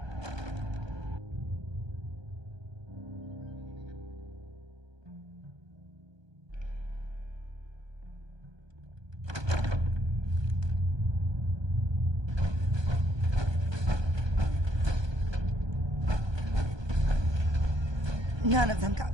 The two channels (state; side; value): late; left; 1.2 ms